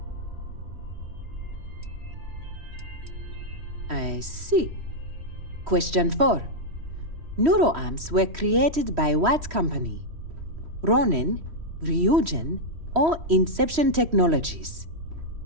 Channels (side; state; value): left; late; 3.1 ms